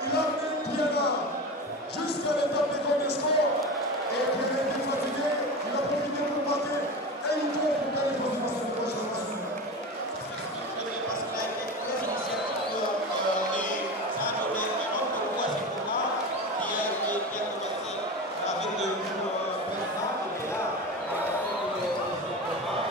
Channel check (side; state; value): both; normal; correlation 0.27